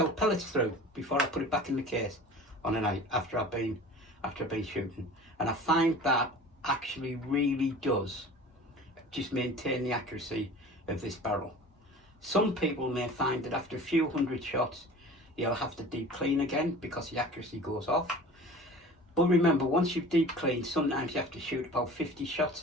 pellets through before I put it back in the case on a night after I've been shooting. And I find that actually really does just maintain the accuracy of this barrel. Some people may find that after a few hundred shots you'll have to deep clean again because the accuracy goes off. But remember, once you've deep cleaned, sometimes you have to shoot about 50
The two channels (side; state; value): both; normal; correlation 0.41